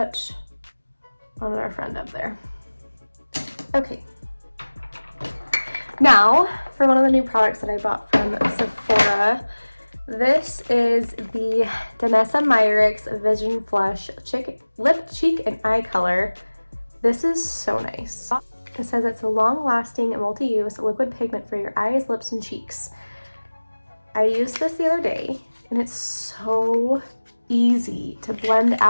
on our friend up there. Okay. Now, for one of the new products that I bought from Sephora, this is the Danessa Myricks Vision Flush Lip, Cheek, and Eye Color. This is so nice. It says it's a long-lasting and multi-use liquid pigment for your eyes, lips, and cheeks. I used this the other day, and it's so easy to blend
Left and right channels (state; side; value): inverted; both; correlation -1.00